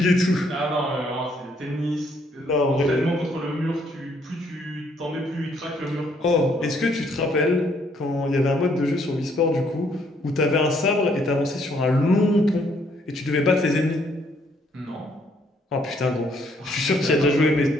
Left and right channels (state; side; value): normal; both; correlation 0.68